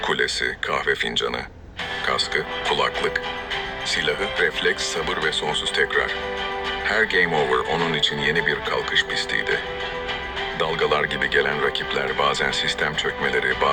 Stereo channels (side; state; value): both; identical; correlation 1.00